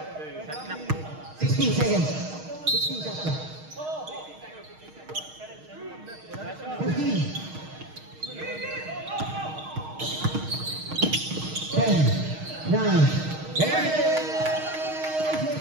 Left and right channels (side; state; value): left; late; 6.4 ms